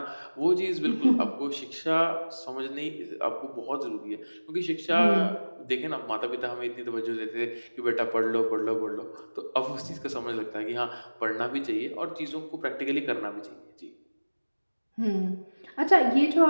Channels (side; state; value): both; inverted; correlation -1.00